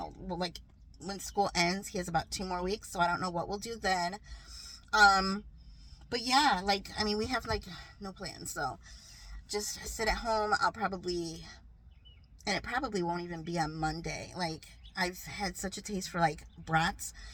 like when school ends. He has about 2 more weeks, so I don't know what we'll do then. Um, but yeah, like I mean, we have like no plans, so just sit at home. And it probably won't even be on Monday. Like I've had such a taste for like brats,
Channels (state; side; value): identical; both; correlation 1.00